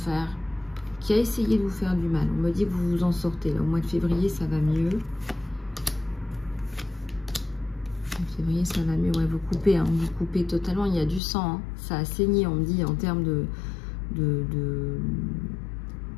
faire, qui a essayé de vous faire du mal. On me dit que vous vous en sortez. Là, au mois de février, ça va mieux. En février, ça va mieux. Ouais, vous coupez, hein, vous coupez totalement. Il y a du sang. Hein. Ça a saigné, on me dit, en termes de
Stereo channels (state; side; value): drops out; right; at 11.2 s